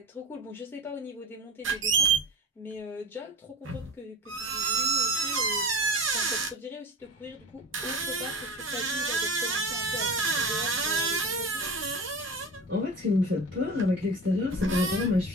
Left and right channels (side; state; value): both; normal; correlation 0.32